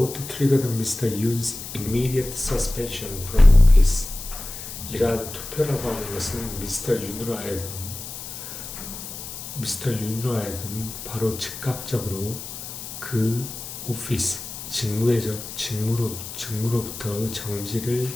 triggered Mr. Yoon's immediate suspension from office. 이러한 투표라고 하는 것은 미스터 윤으로 하여금 바로 즉각적으로 그 오피스, 직무로부터 정지를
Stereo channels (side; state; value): left; noise; hiss, 10 dB below the sound